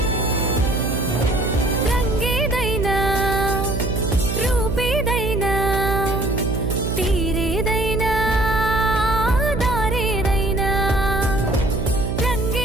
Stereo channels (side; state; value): right; noise; hum, 2 dB below the sound